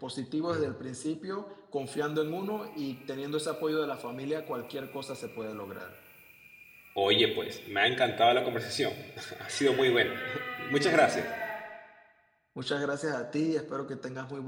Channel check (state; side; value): identical; both; correlation 1.00